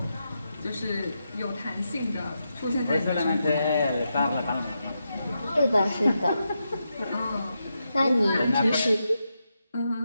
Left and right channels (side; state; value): both; inverted; correlation -0.86